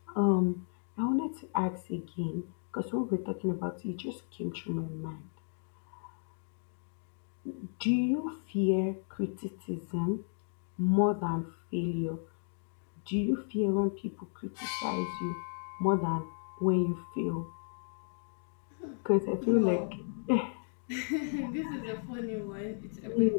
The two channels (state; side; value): silent; right; 55 dB below the other